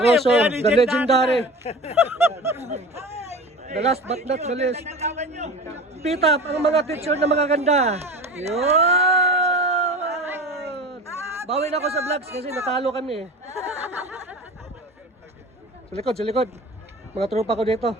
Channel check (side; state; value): both; normal; correlation 0.34